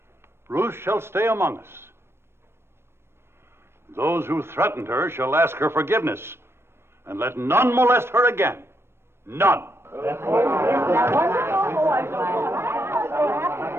Ruth shall stay among us. Those who threatened her shall ask her forgiveness, and let none molest her again. None.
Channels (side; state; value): left; late; 0.12 ms